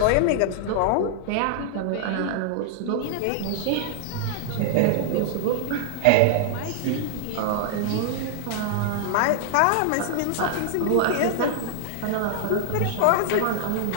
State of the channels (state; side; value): different; both; correlation 0.00